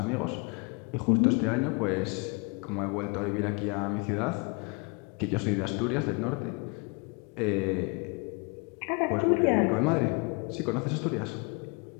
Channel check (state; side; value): quieter; right; 31.9 dB